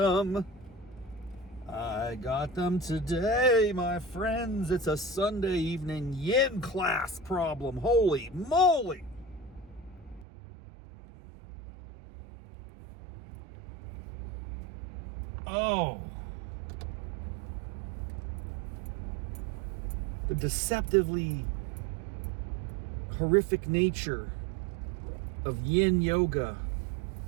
got them today, my friends. It's a Sunday evening yin class problem. Holy moly. Oh. The deceptively horrific nature of Yin Yoga.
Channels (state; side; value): drops out; left; at 10.2 s